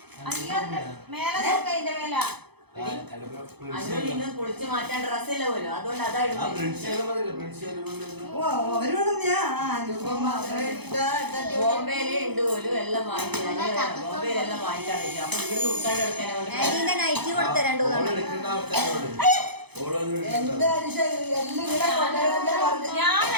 മേലെ നോക്ക, അതിന്റെ മേല പൊളിച്ച് മാറ്റാൻ ഡ്രസ്സില്ല പോലും. അതുകൊണ്ട് അതാ ബോംബെയിലേ ഉണ്ട് പോലും. എല്ലാം വാങ്ങിക്കാൻ ബോംബെയിലെല്ലാം വാങ്ങിക്കാൻ പറ്റും. അപ്പൊ ഇവിടെ ഉൾക്കാണ്ട് എടുക്കാനാണ് നൈറ്റി കൊടുത്ത 2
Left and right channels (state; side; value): late; left; 0.98 ms